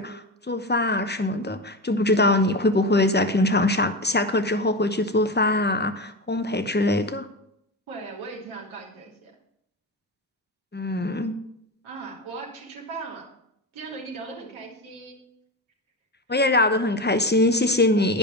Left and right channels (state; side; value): normal; both; correlation 0.21